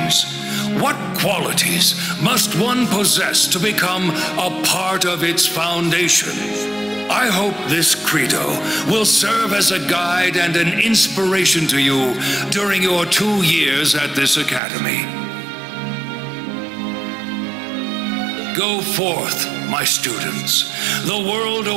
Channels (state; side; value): drops out; left; at 14.6 s